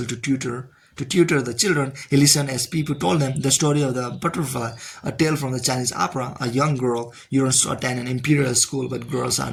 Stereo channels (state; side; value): identical; both; correlation 1.00